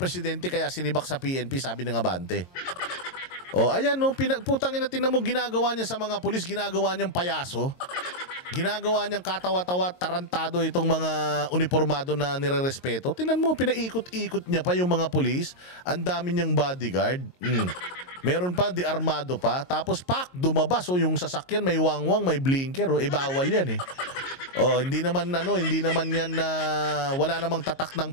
kaya sinibak sa PNP, sabi ng Abante. Ayan putangin na tingnan mo ginagawa niya sa mga pulis, ginagawa niyang payaso. Ginagawa niyang katawa-tawa, tarantado itong mga uniformado na nirerespeto. Tingnan mo, pinaikot-ikot niya pa yung mga pulis. Ang dami niyang bodyguard. Meron pa, di armado pa. Tapos dumabas. Yung sasakyan may wangwang, may blinker. Bawal yan eh. Hindi naman yan na wala namang tatak ng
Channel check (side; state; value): right; late; 22 ms